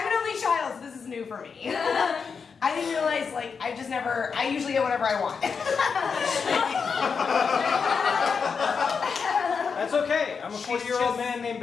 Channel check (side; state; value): right; quieter; 5.7 dB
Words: an only child, so this is new for me. I didn't realize, like, I usually get whatever I want. That's okay. I'm a 40-year-old man named